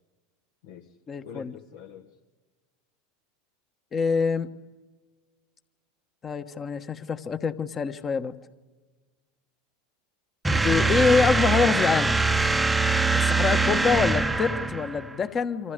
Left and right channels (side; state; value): both; normal; correlation 0.79